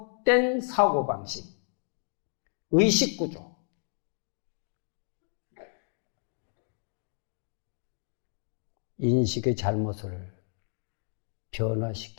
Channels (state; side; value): silent; right; 57 dB below the other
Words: 사고방식, 의식구조, 인식의 잘못을